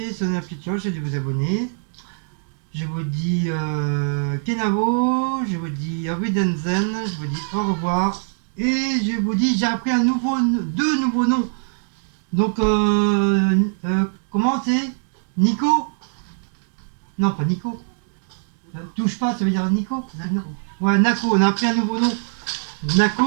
sonner la petite cloche et de vous abonner. Je vous dis Kenavo, je vous dis Widenzen, je vous dis au revoir. Et je vous dis, j'ai appris deux nouveaux noms. Donc, comment c'est Nico? Non, pas Nico. Touche pas, ça veut dire Nico? Nako. Non. Ouais, Nako, on a appris un nouveau nom.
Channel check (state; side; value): silent; left; digital silence